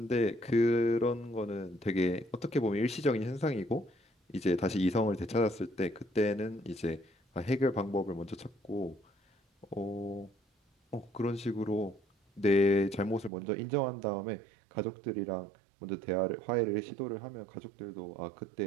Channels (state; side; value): drops out; left; at 13.3 s